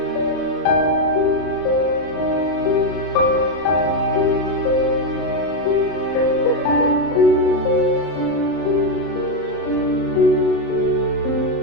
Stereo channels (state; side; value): late; right; 35 ms